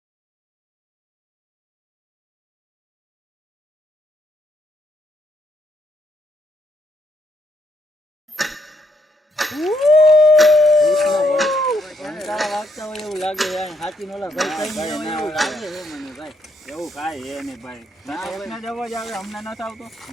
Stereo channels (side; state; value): both; normal; correlation 0.75